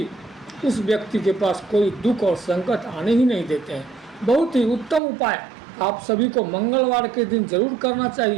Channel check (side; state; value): left; drops out; at 5.0 s